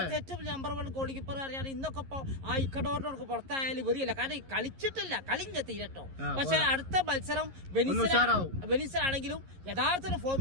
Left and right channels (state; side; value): late; left; 11 ms